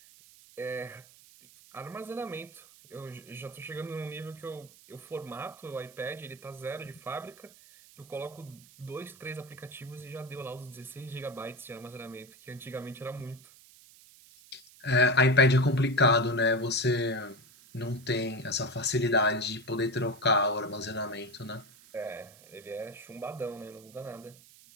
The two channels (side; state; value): right; noise; hiss, 23 dB below the sound